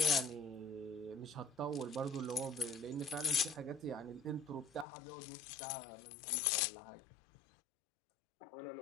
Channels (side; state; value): right; drops out; at 4.9 s